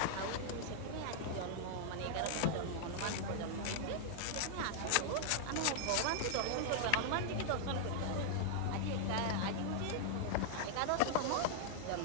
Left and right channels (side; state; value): both; different; correlation -0.01